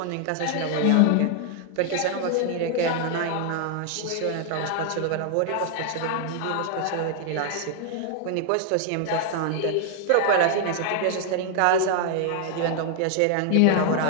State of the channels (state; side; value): different; both; correlation 0.00